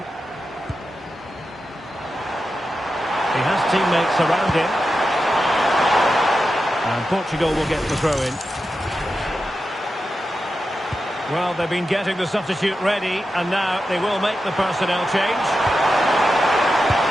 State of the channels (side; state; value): both; normal; correlation 0.90